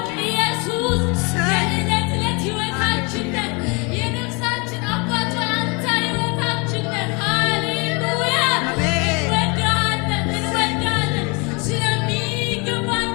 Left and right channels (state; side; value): quieter; right; 30.6 dB